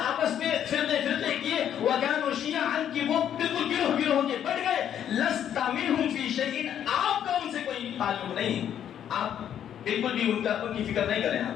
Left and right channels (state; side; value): quieter; right; 9.8 dB